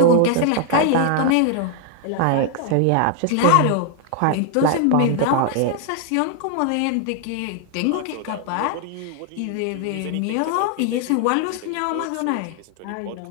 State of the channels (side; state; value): both; different; correlation 0.00